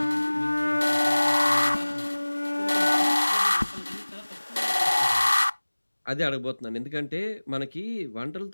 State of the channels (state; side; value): inverted; both; correlation -1.00